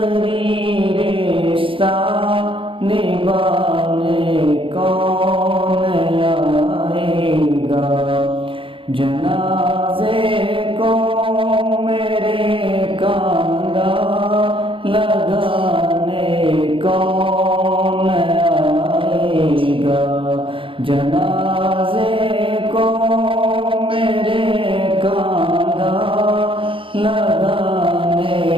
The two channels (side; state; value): left; late; 0.25 ms